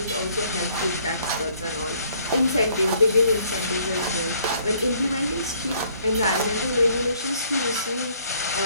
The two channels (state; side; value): inverted; both; correlation -0.63